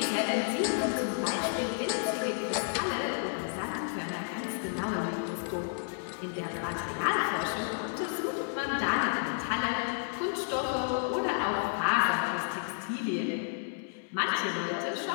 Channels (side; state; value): right; silent; digital silence